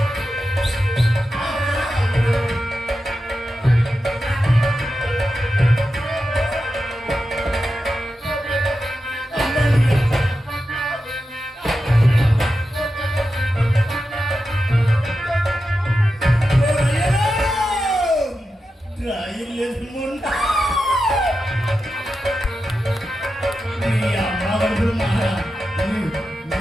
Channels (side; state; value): both; normal; correlation 0.90